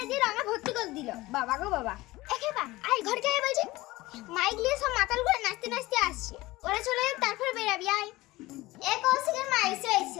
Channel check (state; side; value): quieter; right; 19.4 dB